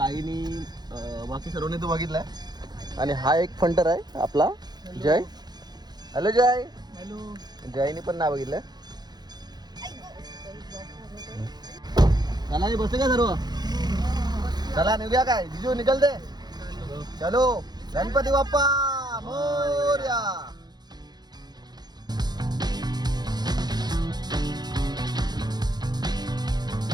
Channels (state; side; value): late; left; 0.20 ms